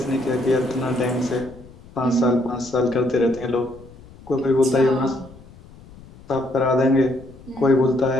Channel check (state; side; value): noise; left; rumble, 21 dB below the sound